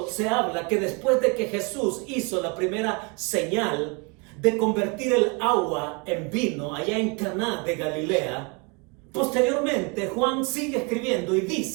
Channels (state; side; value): quieter; left; 31.8 dB